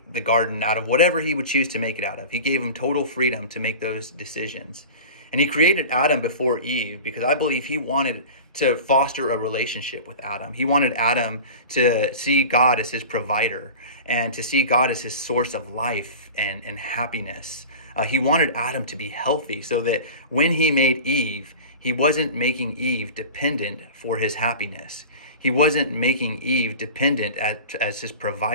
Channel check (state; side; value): inverted; both; correlation -0.35